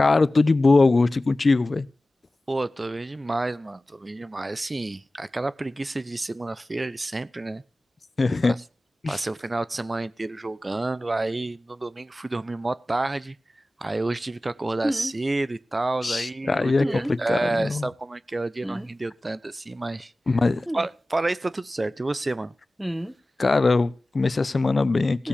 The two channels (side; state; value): both; normal; correlation 0.96